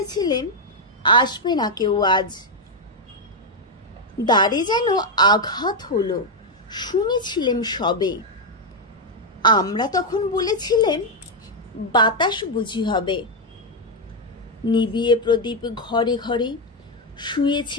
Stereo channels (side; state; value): both; normal; correlation 0.02